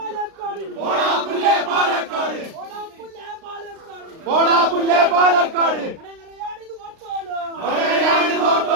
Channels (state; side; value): late; left; 36 ms